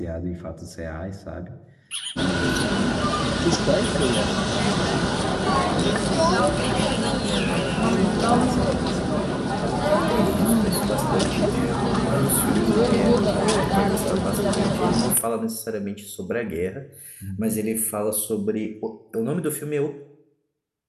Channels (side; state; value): both; identical; correlation 1.00